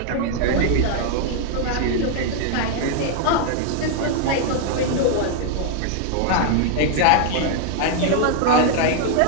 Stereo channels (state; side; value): different; both; correlation 0.00